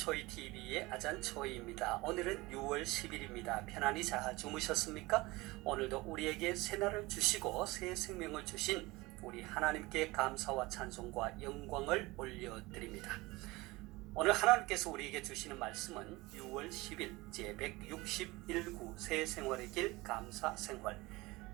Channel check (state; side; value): quieter; left; 21.7 dB